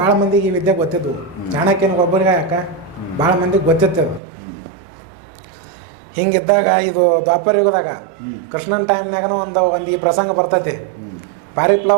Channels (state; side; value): drops out; left; at 4.2 s